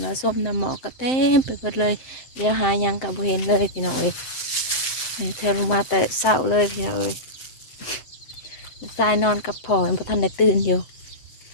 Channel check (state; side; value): late; right; 8.0 ms